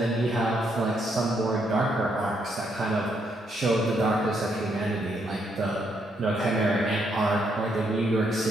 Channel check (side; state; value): both; normal; correlation 0.75